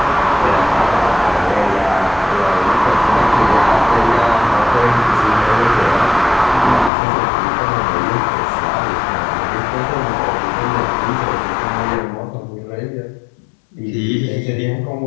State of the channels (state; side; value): drops out; right; at 6.9 s